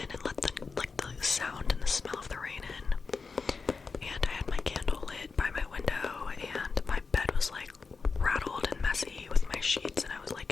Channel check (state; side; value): quieter; right; 4.7 dB